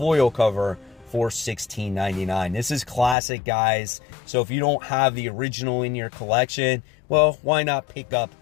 cover for $16.99. This is classic, guys. So if you don't have the original in your collection, well, why not pick up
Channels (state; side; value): drops out; right; at 3.2 s